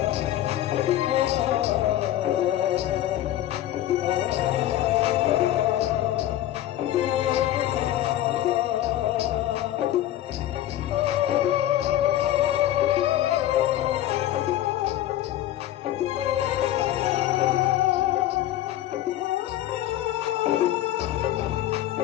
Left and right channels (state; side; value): quieter; right; 13.2 dB